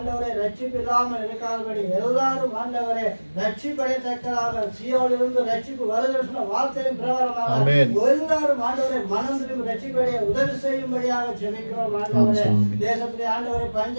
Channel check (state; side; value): inverted; both; correlation -1.00